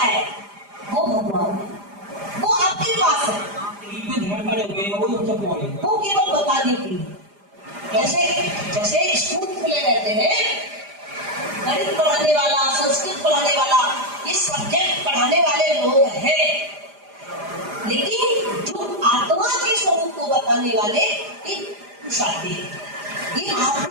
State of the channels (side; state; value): left; late; 4.9 ms